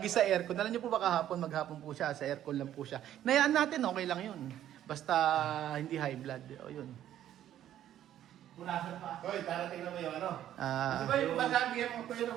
sa aircon. Alam niyo po ba kahapon, maghapon po siya, sa aircon lang po siya. Nayaan natin, okay lang yun. Basta hindi high blood. O yun. Punasan pa. Hoy, darating na ba yung ano? Ah, Di ba yung bagagi mo pa yun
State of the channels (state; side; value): quieter; left; 11.6 dB